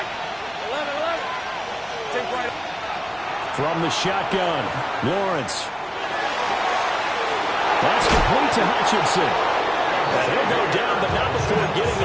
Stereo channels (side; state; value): both; identical; correlation 1.00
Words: From the shotgun, Lawrence. That's complete to Hutchinson. And he'll go down, but not before getting